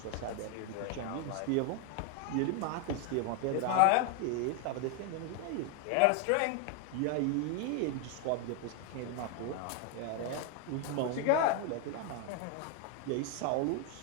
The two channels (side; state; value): both; different; correlation 0.01